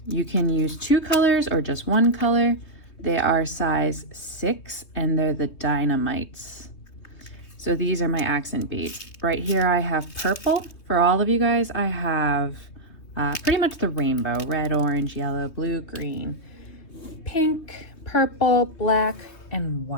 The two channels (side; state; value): right; late; 3.2 ms